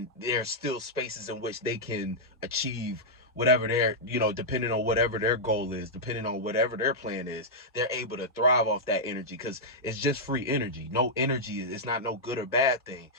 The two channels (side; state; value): both; normal; correlation -0.08